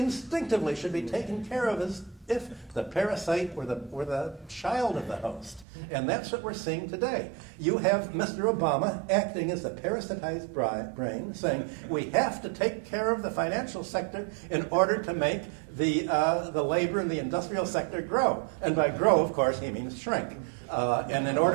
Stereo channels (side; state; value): left; drops out; at 5.7 s